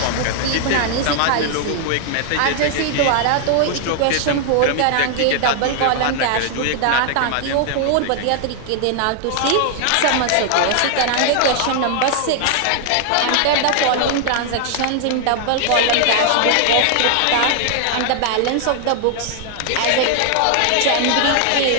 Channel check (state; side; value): different; both; correlation 0.00